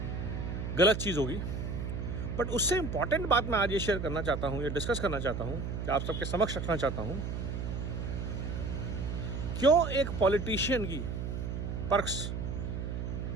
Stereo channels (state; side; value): noise; right; hum, 4 dB below the sound